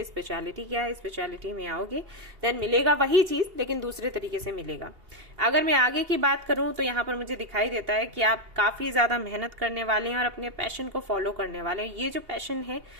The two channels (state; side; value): late; left; 2.8 ms